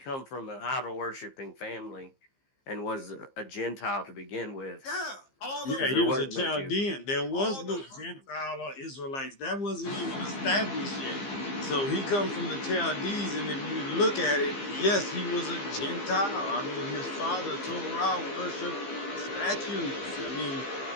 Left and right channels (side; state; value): right; late; 15 ms